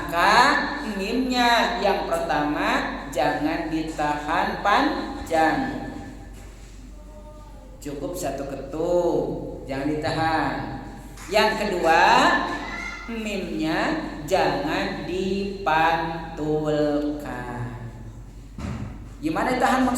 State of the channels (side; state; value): both; identical; correlation 1.00